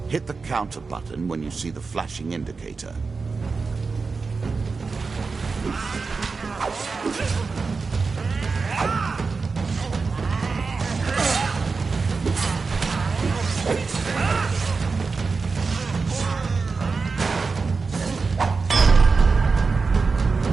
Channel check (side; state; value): left; quieter; 4.5 dB